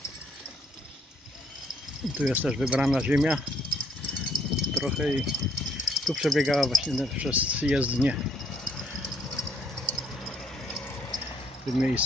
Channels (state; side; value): normal; both; correlation 0.64